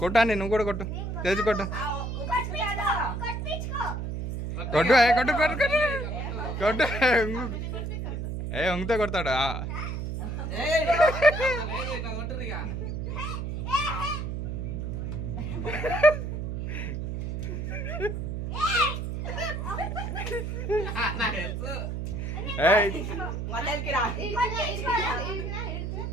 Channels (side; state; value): right; noise; hum, 4 dB below the sound